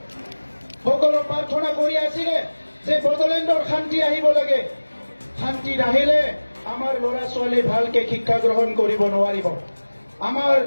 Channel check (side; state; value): both; inverted; correlation -1.00